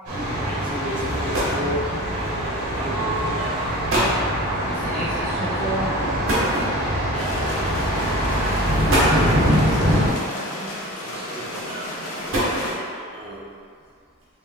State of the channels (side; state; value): both; normal; correlation 0.38